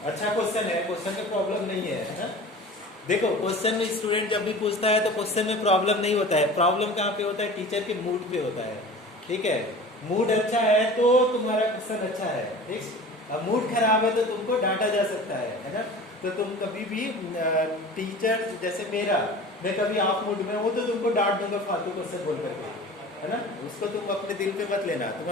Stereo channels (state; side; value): normal; both; correlation 0.39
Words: अच्छा क्वेश्चन है, क्वेश्चन में प्रॉब्लम नहीं है ना? देखो क्वेश्चन में स्टूडेंट जब भी पूछता है तो क्वेश्चन में प्रॉब्लम नहीं होता है। प्रॉब्लम कहाँ पे होता है? टीचर के मूड पे होता है, ठीक है? मूड अच्छा है तो तुम्हारा क्वेश्चन अच्छा है, ठीक? अब मूड खराब है तो तुमको डांटा जा सकता है ना? तो तुम कभी भी टीचर जैसे मैं कभी ऑफ मूड में हूँ तो तुमको डांट दूंगा फालतू क्वेश्चन बोल करके, है ना? उसको तुम अपने दिल पे मत लेना।